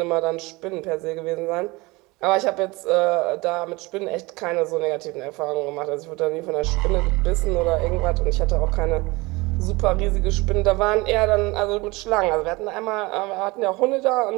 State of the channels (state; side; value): quieter; left; 23.2 dB